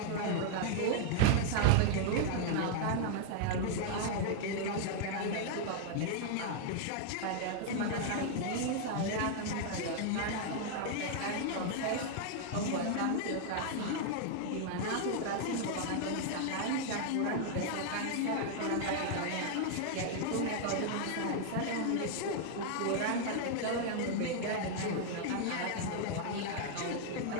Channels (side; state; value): both; different; correlation -0.01